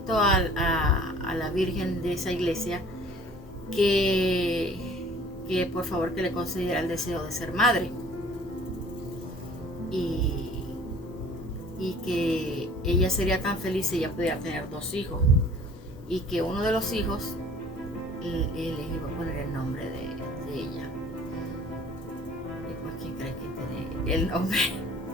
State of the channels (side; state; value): both; normal; correlation 0.50